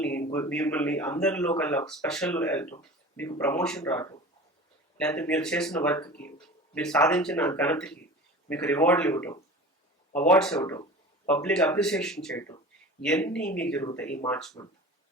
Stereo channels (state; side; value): normal; both; correlation 0.37